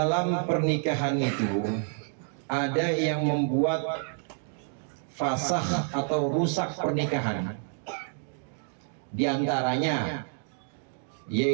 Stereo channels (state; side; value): silent; left; 56 dB below the other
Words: pernikahan itu ada yang membuat fasah atau rusak pernikahan. Di antaranya